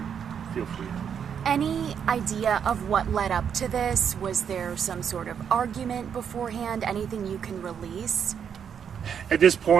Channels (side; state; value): left; quieter; 7.8 dB